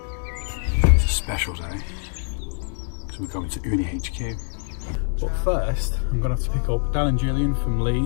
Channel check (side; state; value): right; silent; digital silence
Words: is a special day because we're going to Unihq. But first, I'm going to have to pick up Dan and Julian from